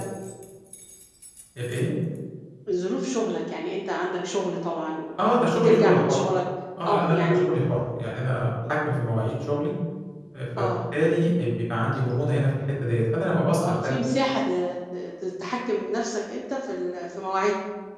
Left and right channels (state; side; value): identical; both; correlation 1.00